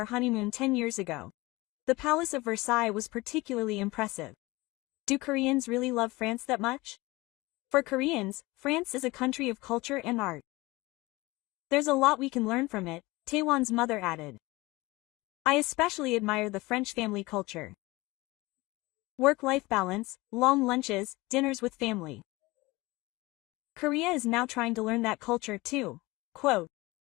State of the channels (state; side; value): quieter; right; 21.6 dB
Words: honeymoon 10 years ago. The Palace of Versailles was particularly impressive. Do Koreans really love France that much? For Koreans, France is a country of culture and art. There's a lot we can learn from it, Taewon's mother added. I especially admire the French family culture. Work-life balance, long lunches, dinners with family. Korea is now trying to learn that culture too. Quote.